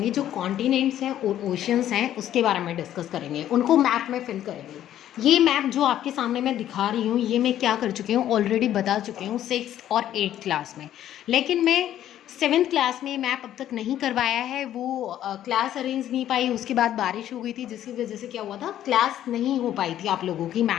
जो कॉन्टिनेंट्स हैं और ओशियंस हैं उसके बारे में डिस्कस करेंगे, उनको मैप में फिल करेंगे। ये मैप जो आपके सामने मैं दिखा रही हूँ, ये मैं क्या कर चुकी हूँ, ऑलरेडी बता चुकी हूँ 6th और 8th क्लास में। लेकिन मैं 7th क्लास में मैप अब तक नहीं करवाया है, वो क्लास अरेंज नहीं पाई। उसके बाद बारिश हो गई थी, जिसकी वजह से क्या हुआ था, क्लास नहीं हो पाई थी आप लोगों की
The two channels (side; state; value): right; quieter; 11.7 dB